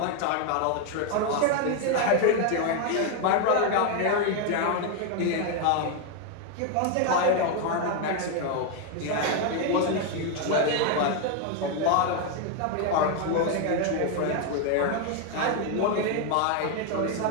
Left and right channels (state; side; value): different; both; correlation 0.01